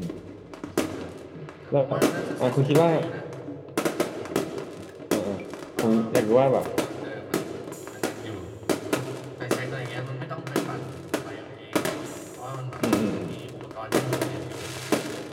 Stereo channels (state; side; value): identical; both; correlation 1.00